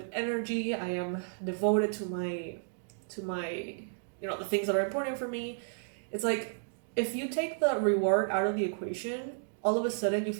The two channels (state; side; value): silent; left; digital silence